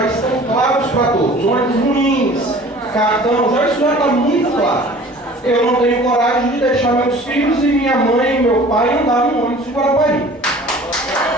estão claros para todos. Ônibus ruins, cartão, isso já está muito claro. Eu não tenho coragem de deixar meus filhos e minha mãe e meu pai andar no ônibus de Guarapari.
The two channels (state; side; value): normal; both; correlation 0.46